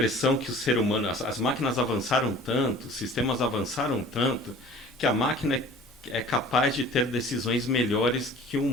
que o ser humano, as máquinas avançaram tanto, os sistemas avançaram tanto, que a máquina é capaz de ter decisões melhores que o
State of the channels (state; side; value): normal; both; correlation 0.46